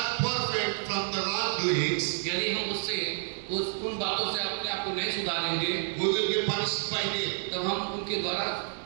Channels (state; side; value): silent; left; 58 dB below the other